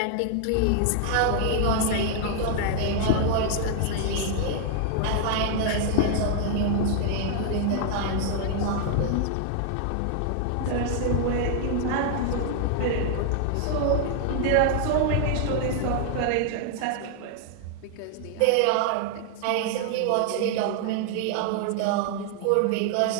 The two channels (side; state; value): both; different; correlation 0.00